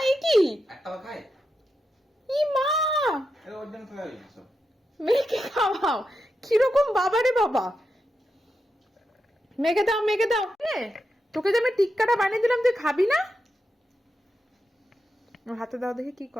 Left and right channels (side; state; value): both; normal; correlation 0.87